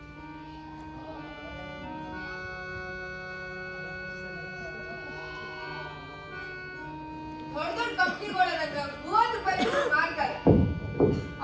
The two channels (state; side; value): identical; both; correlation 1.00